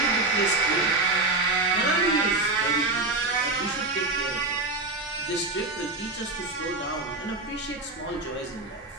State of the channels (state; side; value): quieter; left; 3.1 dB